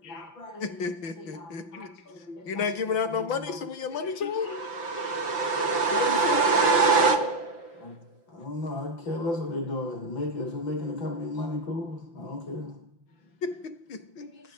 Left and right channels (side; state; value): right; late; 5.8 ms